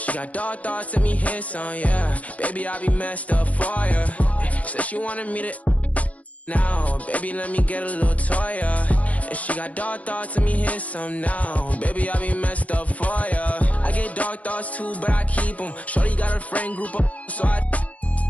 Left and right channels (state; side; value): late; right; 0.068 ms